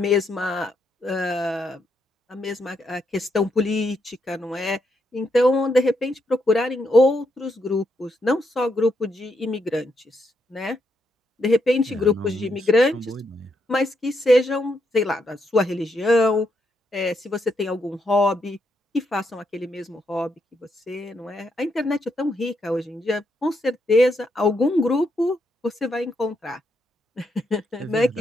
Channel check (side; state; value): both; normal; correlation 0.79